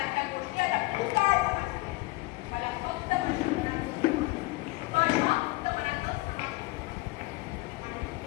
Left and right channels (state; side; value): quieter; right; 22.1 dB